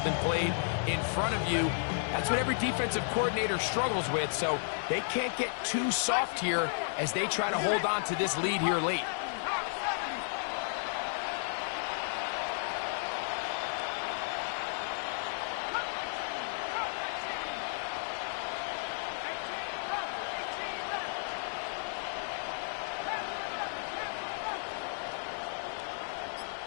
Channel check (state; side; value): silent; right; 56 dB below the other